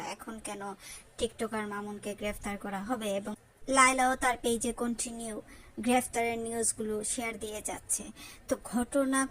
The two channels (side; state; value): both; identical; correlation 1.00